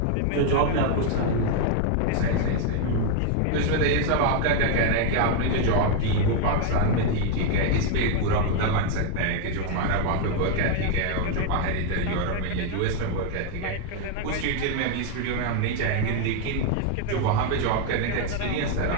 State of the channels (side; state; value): both; different; correlation 0.00